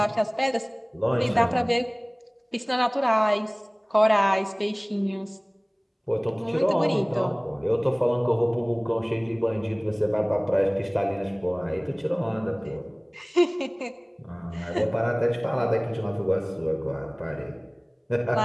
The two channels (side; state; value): both; identical; correlation 1.00